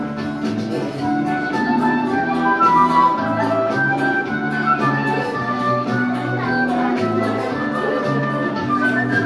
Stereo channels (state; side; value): identical; both; correlation 1.00